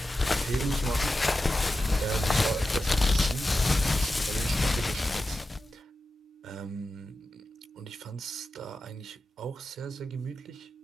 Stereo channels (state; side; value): normal; both; correlation 0.92